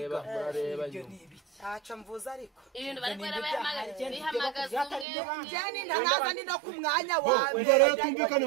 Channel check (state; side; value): drops out; left; at 5.1 s